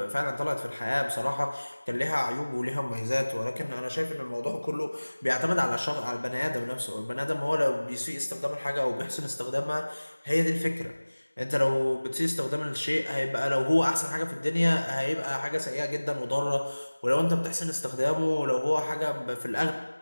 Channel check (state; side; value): inverted; both; correlation -1.00